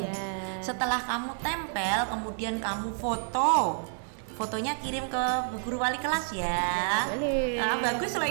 Ya. Setelah kamu tempel, kemudian kamu foto. Fotonya kirim ke Bu Guru Wali kelas ya. Boleh. Nah, bagus lah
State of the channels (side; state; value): left; silent; 58 dB below the other